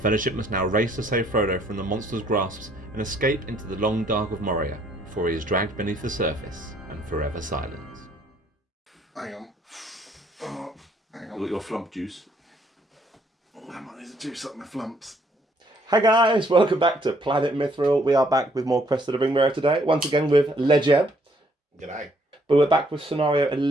must now race to save Frodo from the monster's grasps and escape into the long dark of Moria before he is dragged beneath the surface and forever silenced. Hang on. Oh, hang on. You got your flump juice? I might need to juice up my flumps. Hi guys, welcome back to Planet Mithril. We are back with more Quest of the Ringbearer today, once again with Lejeb. G'day. But we're back with scenario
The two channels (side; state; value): both; normal; correlation 0.66